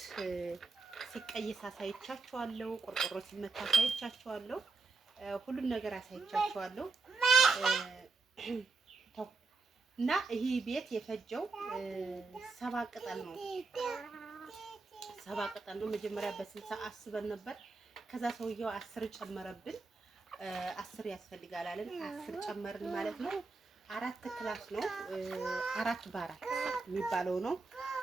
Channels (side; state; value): left; quieter; 4.0 dB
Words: ሲቀየስ አሳይቻችኋለሁ፣ ቆርቆሮ ሲመታ አሳይቻችኋለሁ፣ ሁሉም ነገር አሳይቻችኋለሁ። እና ይሄ ቤት የፈጀው 7 ቅጠል ነው። 7 ቅጠል ነው። መጀመሪያ በ60 አስበን ነበር። ከዛ ሰውየው 10 ጨመረብን። 10 ያስፈልጋል አለን። 10 ጨመርን ማለት ነው። 4 ክላስ ነው። 4 በ4 የሚባለው ነው።